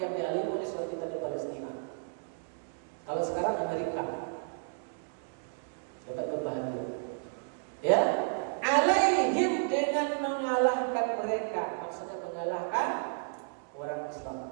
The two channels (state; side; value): silent; left; digital silence